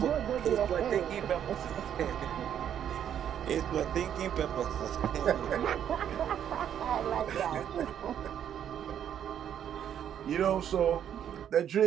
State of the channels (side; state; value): left; quieter; 9.6 dB